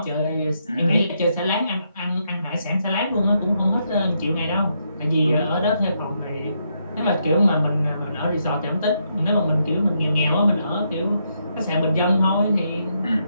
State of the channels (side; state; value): both; inverted; correlation -0.78